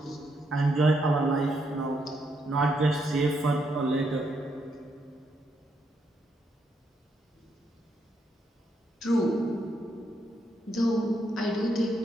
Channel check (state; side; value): normal; both; correlation 0.78